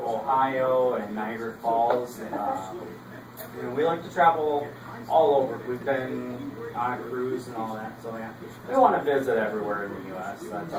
Ohio and Niagara Falls, and we like to travel all over. We've been on a cruise and all that, so yeah. We want to visit everywhere in the U.S. That's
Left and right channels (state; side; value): identical; both; correlation 1.00